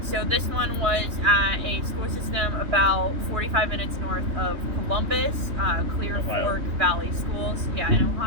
So this one was at a school system about 45 minutes north of Columbus, Clear Fork Valley Schools, in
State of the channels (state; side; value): late; left; 3.2 ms